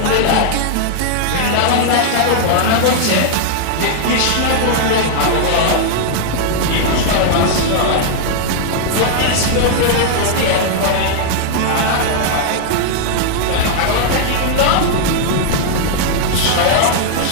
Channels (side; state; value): both; different; correlation -0.01